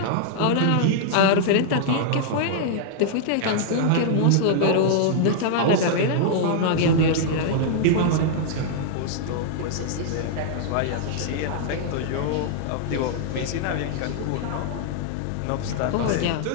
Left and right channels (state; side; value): different; both; correlation -0.01